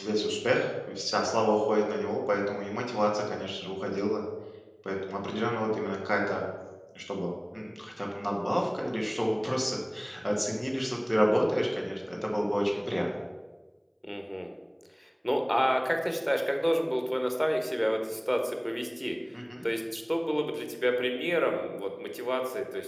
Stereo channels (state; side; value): identical; both; correlation 1.00